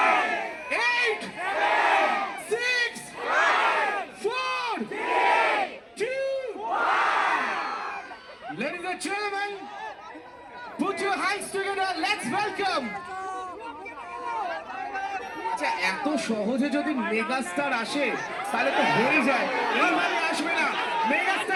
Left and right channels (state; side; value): identical; both; correlation 1.00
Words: 8 6 4 2 1 Ladies and gentlemen put your hands together let's welcome আচ্ছা এত সহজে যদি মেগাস্টার আসে তাহলে তো হয়ে যায় এইভাবে আসবে না